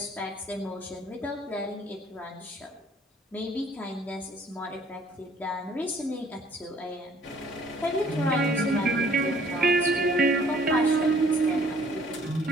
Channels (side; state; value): both; normal; correlation 0.58